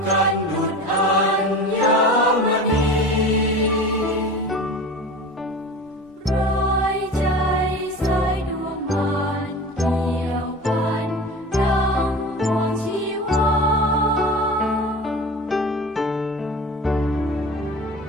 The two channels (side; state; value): both; normal; correlation 0.34